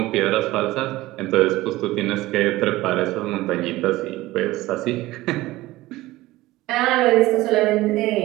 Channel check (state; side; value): quieter; left; 18.0 dB